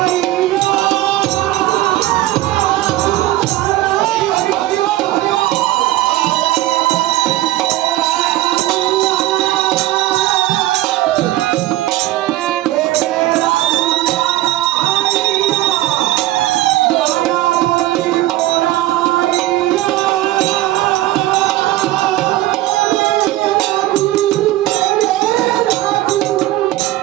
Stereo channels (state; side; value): quieter; left; 15.9 dB